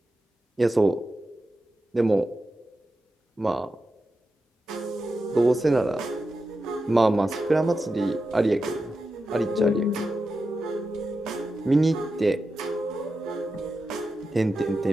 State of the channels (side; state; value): both; normal; correlation 0.90